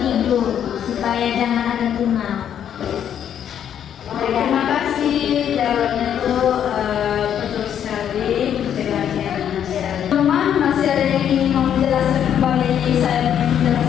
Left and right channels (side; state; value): right; quieter; 9.3 dB